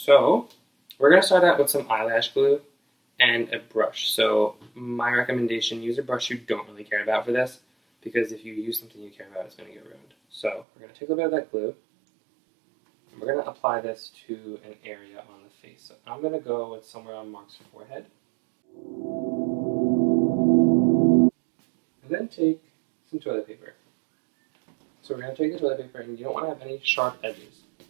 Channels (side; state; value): left; drops out; at 10.7 s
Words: So we're going to start out with some eyelash glue and a brush. So my recommendation, use a brush you don't really care about for this, because if you use something you care about, it's going to get ruined. So we're going to take a little bit of that glue, and we're going to apply this to an area on the face. So I'm going to go with somewhere on Mark's forehead. And then take some toilet paper. So we're going to take the toilet paper, and you don't want to have any sharp edges.